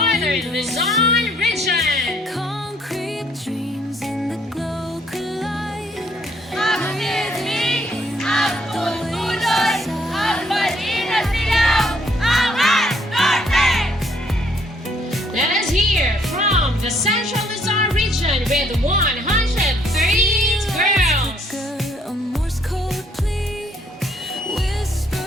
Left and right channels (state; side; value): normal; both; correlation 0.66